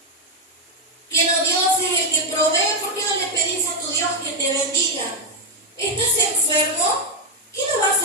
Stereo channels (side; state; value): both; normal; correlation 0.03